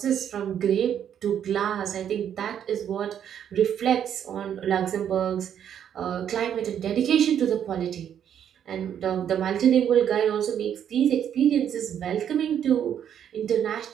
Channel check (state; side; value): quieter; left; 9.2 dB